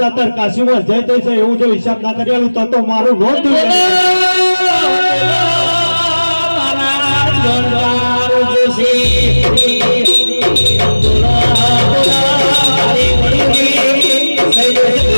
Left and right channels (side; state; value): both; inverted; correlation -1.00